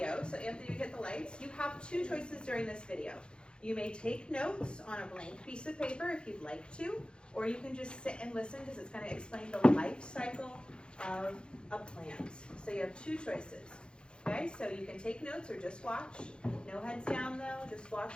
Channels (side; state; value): right; late; 0.052 ms